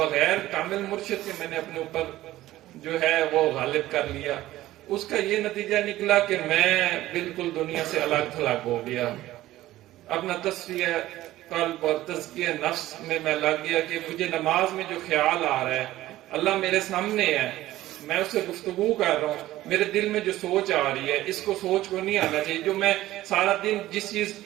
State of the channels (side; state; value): left; quieter; 15.5 dB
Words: کامل مرشد کے میں نے اپنے اوپر جو ہے وہ غالب کر لیا۔ اس کا یہ نتیجہ نکلا کہ میں بالکل دنیا سے الگ تھلگ ہو گیا۔ اپنا تصفیہ قلب اور تزکیہ نفس میں لگ گیا کہ مجھے نماز میں جو خیال آ رہا ہے، اللہ میرے سامنے ہے، میں اس سے گفتگو کر رہا ہوں، میرے دل میں جو سوچ آ رہی ہے اس کو سوچ کو نہیں آنا چاہیے۔ جو میں سارا دن جس چیز